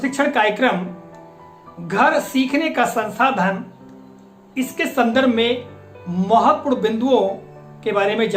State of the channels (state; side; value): identical; both; correlation 1.00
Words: कार्यक्रम घर सीखने का संसाधन, इसके संदर्भ में महत्वपूर्ण बिंदुओं के बारे में